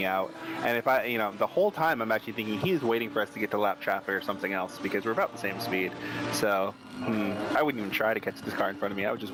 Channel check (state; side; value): identical; both; correlation 1.00